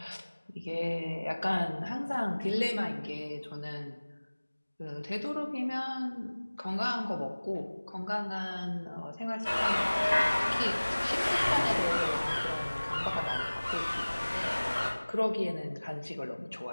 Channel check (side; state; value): both; inverted; correlation -1.00